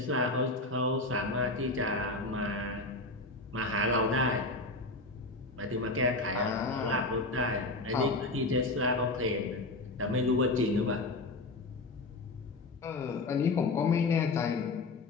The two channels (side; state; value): right; quieter; 3.0 dB